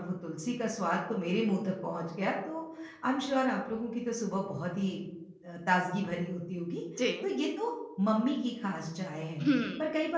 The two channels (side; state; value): both; identical; correlation 1.00